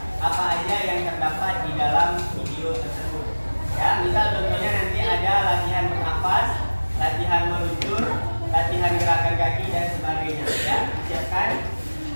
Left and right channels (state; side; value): inverted; both; correlation -1.00